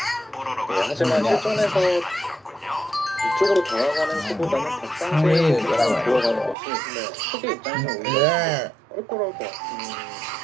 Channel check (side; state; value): left; drops out; at 6.6 s